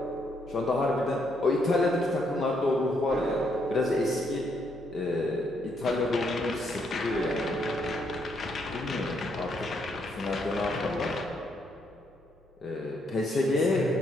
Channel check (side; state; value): both; normal; correlation 0.74